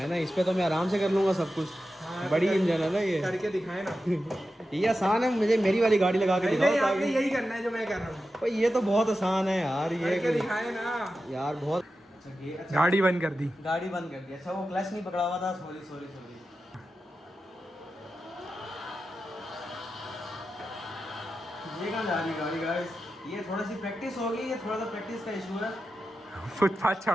ना, इस पे तो मैं आराम से कर लूँगा सब कुछ। हाँ, बड़ी इंजन है ना ये, करके दिखाए ना। ये आसान है, मुझे मेरी वाली गाड़ी लगा के दिखाओ। आपने यही करना है जो मैं कर रहा हूँ। ये तो बहुत आसान है यार, ये करके दिखाए ना यार बहुत। गाड़ी बंद कर दी, गाड़ी बंद कर दी। अच्छा वो क्लच नहीं पकड़ा हुआ था, सॉरी। ये कहाँ जा रही है गाड़ी गाइस? ये थोड़ी सी प्रैक्टिस होगी, ये थोड़ा सा प्रैक्टिस का इशू है। फुटपाथ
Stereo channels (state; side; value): normal; both; correlation 0.91